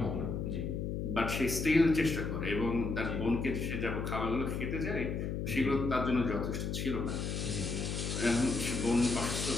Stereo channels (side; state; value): left; noise; hum, 2 dB below the sound